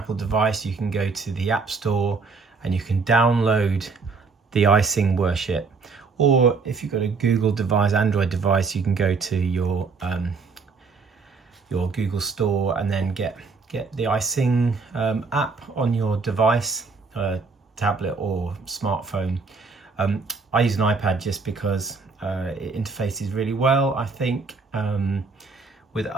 device, you can go to the App Store and you can download the iSing worship. Or if you've got a Google device, Android device, you can go to your Google Store and then get the iSing app on your device, tablet or smartphone. I use an iPad just because it interfaces really well, I think, with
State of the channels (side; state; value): left; quieter; 4.5 dB